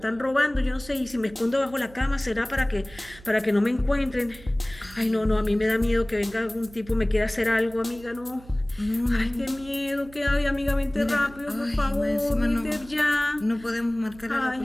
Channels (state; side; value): noise; right; hum, 21 dB below the sound